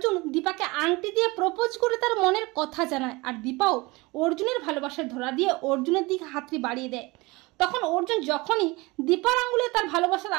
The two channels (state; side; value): quieter; left; 23.6 dB